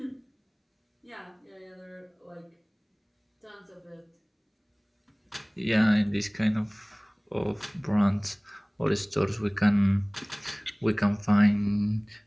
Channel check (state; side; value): identical; both; correlation 1.00